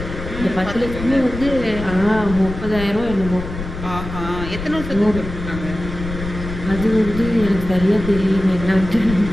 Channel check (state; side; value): noise; left; rumble, 8 dB below the sound